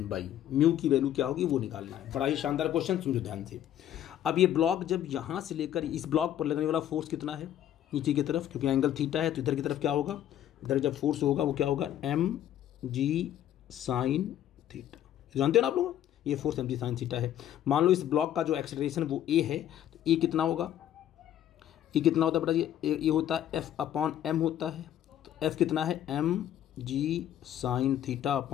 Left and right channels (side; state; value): right; quieter; 11.3 dB